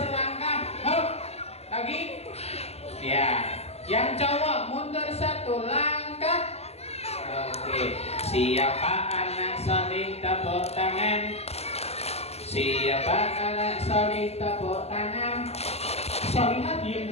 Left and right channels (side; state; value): right; late; 0.30 ms